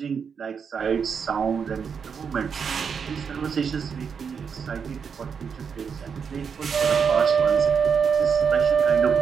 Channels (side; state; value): left; quieter; 6.5 dB